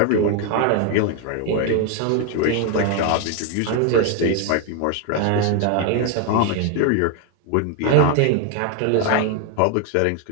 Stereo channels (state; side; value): different; both; correlation 0.01